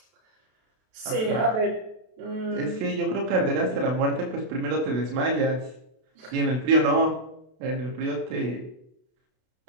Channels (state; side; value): late; left; 32 ms